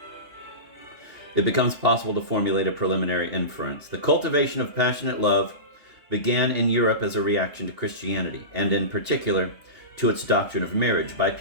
it becomes possible to formulate a preliminary inference. The cultivation of passionate love began in Europe as a reaction to Christianity, and in particular to its doctrine of marriage, by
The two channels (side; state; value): left; late; 2.8 ms